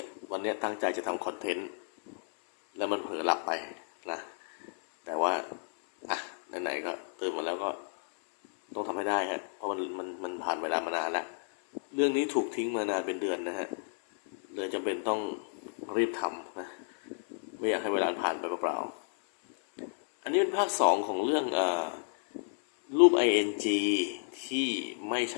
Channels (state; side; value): silent; right; 56 dB below the other